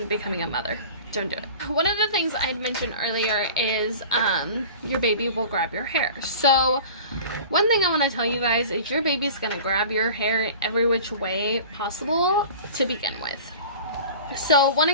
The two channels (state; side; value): inverted; both; correlation -0.40